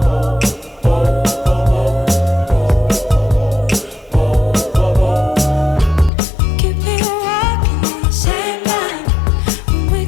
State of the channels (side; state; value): right; drops out; at 6.1 s